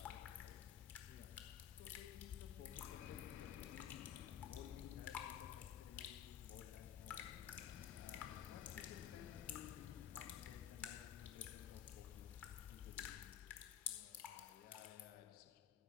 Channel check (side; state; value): right; quieter; 9.9 dB